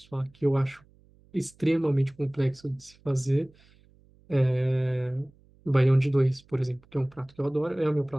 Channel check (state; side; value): noise; right; hum, 30 dB below the sound